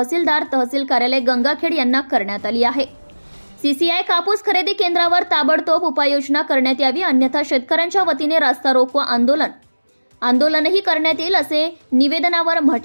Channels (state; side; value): inverted; both; correlation -1.00